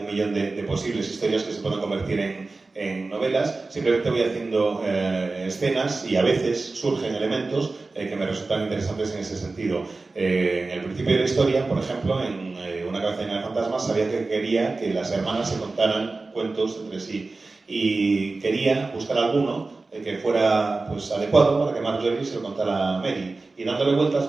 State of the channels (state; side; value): quieter; left; 3.6 dB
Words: 1.000.000 de posibles historias que se puedan convertir en novelas. Simplemente voy haciendo escenas y a veces surgen elementos que me resultan interesantes en ese sentido. En el principio de la historia, por ejemplo, en Una cabeza llena de fantasmas, sabía que quería que las hermanas se contaran cuentos entre sí. Y quería buscar alguno que fuera pues, adecuado para que Marjorie se lo contara a Mary. Y dándole vueltas